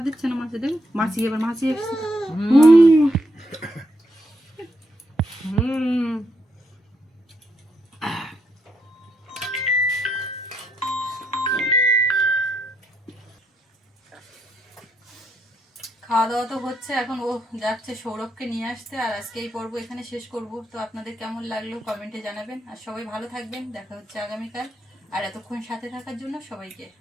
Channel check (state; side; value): normal; both; correlation 0.78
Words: দিচ্ছে না মাছে। দেখ মাছি এবার মাছি এসছে। খাওয়া দাওয়া তো হচ্ছে, এখন ও যাচ্ছে সৌরভকে নিয়ে আসতে। আর আজকে এই পর্ব এখানে শেষ করব। তো আপনাদের কেমন লাগলো কমেন্টে জানাবেন। আর সবাই ভালো থাকবেন, দেখা হচ্ছে আগামীকাল। আর এতক্ষণ সাথে থাকার জন্য সবাইকে